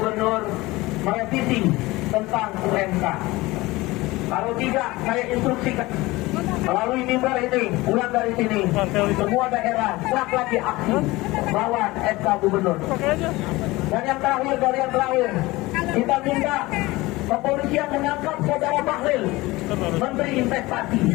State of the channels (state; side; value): quieter; right; 20.5 dB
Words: merevisi tentang UMK. Kalau tidak, saya instruksikan melalui mimbar ini, pulang dari sini, semua daerah siap lagi aksi lawan SK gubernur. Dan yang terakhir, dari yang terakhir, kita minta kepolisian menangkap saudara Bahlil, Menteri